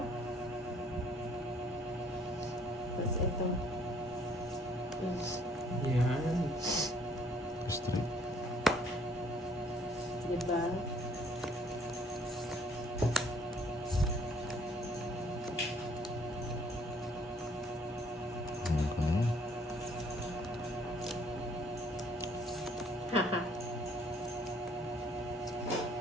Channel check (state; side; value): normal; both; correlation 0.61